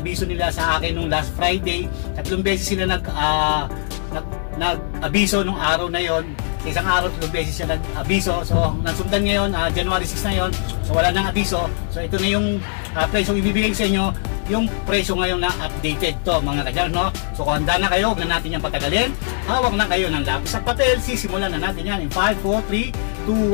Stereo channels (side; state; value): right; silent; 57 dB below the other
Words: nila sa akin nung last Friday. 3 beses sila nag-abiso nung araw na yon. Sa isang araw 3 beses siya nag-abiso. So nasundan ngayon, January 6 na yon. So wala nang abiso. So ito na yung presyo ibibigay sa inyo, yung presyo ngayon na updated to mga ka-jammers, no? So kung handa na kayo, huwag na natin yan patagalin. Hawak na kayo ng lapis at papel. Sisimulan na natin yan in 5, 4, 3, 2,